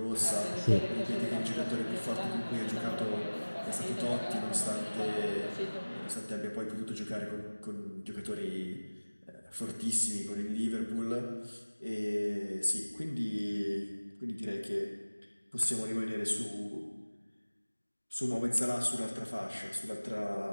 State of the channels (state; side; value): inverted; both; correlation -1.00